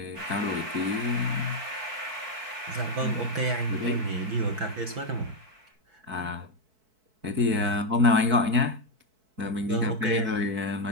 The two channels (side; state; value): left; late; 4.6 ms